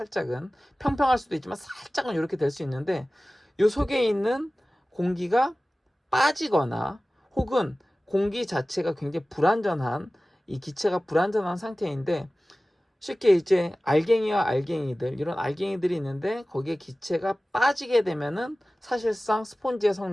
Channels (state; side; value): normal; both; correlation 0.97